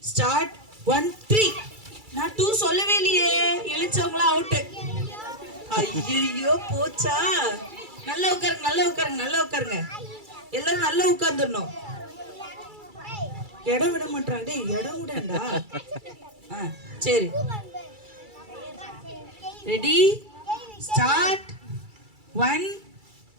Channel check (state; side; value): late; left; 2.3 ms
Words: start. 1 3. நான் 2 சொல்லவே இல்லையே. எழுச்சவங்களா அவுட். ஐயோ போச்சா? நல்லா உட்காருங்க, நல்லா உட்காருங்க, நல்லா உட்காருங்க. எல்லாரும் நல்லா உட்கார்ந்துடணும். இடம் விட மாட்டாங்க. டேய் இடம் விடண்டா. சரி ரெடி ஸ்டார்ட். 1